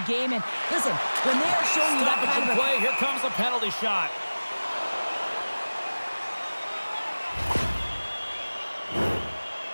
game. And listen, when they are showing you that kind of play, here comes a penalty shot.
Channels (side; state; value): both; inverted; correlation -1.00